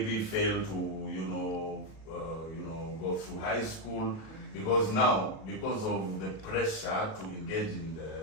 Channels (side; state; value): right; late; 37 ms